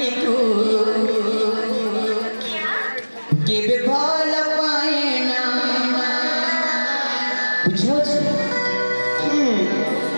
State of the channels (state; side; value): inverted; both; correlation -1.00